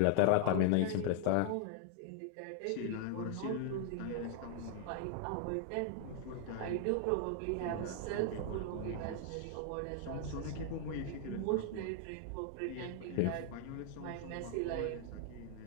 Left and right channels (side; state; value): both; different; correlation 0.00